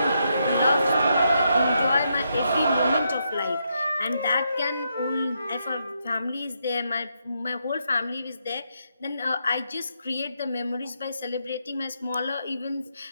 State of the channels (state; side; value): inverted; both; correlation -0.80